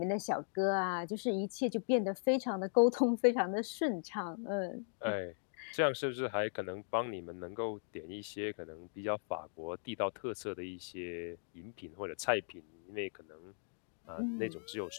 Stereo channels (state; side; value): silent; right; digital silence